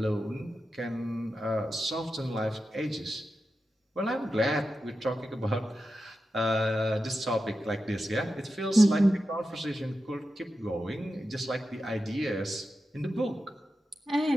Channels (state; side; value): normal; both; correlation 0.91